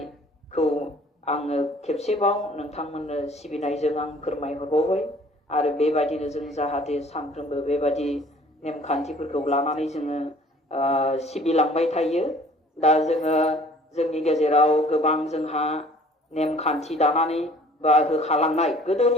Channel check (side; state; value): both; normal; correlation 0.53